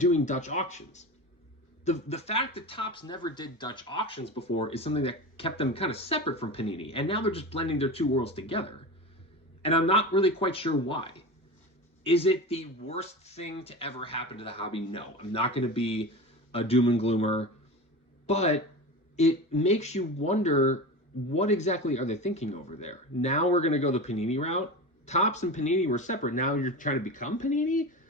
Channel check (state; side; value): normal; both; correlation 0.28